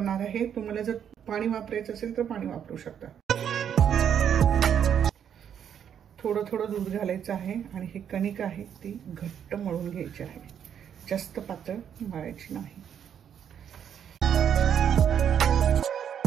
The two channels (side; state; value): left; quieter; 8.7 dB